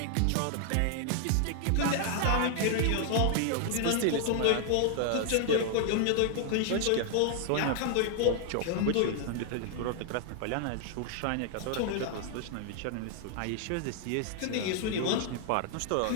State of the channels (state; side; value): different; both; correlation 0.00